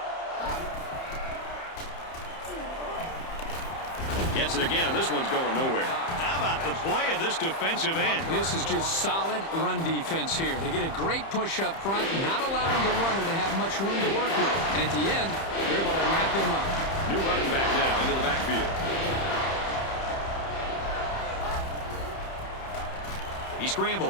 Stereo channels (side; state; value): right; late; 30 ms